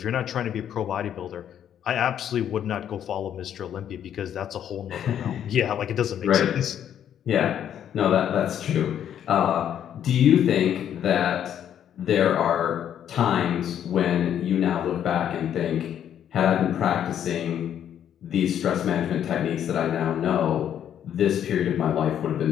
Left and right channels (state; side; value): quieter; right; 9.8 dB